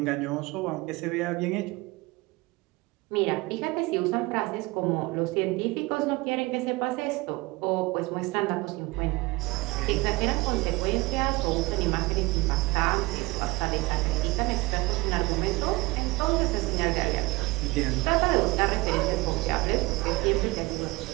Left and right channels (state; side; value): quieter; left; 22.6 dB